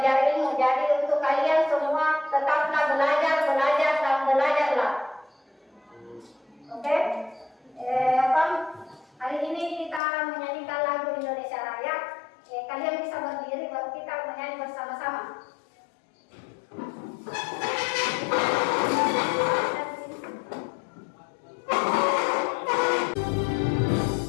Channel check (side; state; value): right; drops out; at 10.0 s